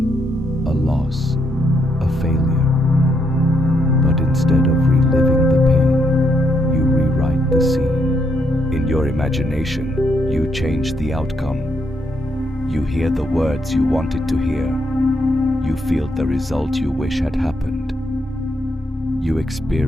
a loss, a failure. But instead of reliving the pain, you rewrite the scene. In your imagination, you change the outcome. You hear the words you wanted to hear. You feel the result you wish had happened. You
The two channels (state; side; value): normal; both; correlation 0.76